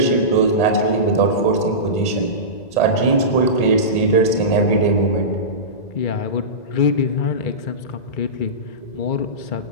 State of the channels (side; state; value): right; late; 1.9 ms